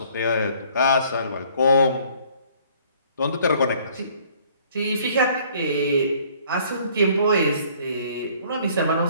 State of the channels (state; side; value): inverted; both; correlation -0.58